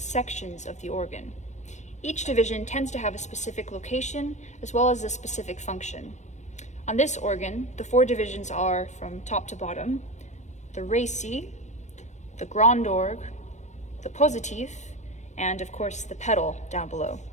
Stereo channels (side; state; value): right; late; 0.34 ms